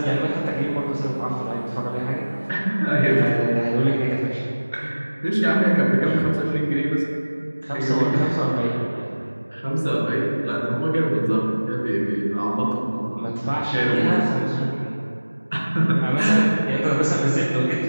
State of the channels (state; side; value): inverted; both; correlation -1.00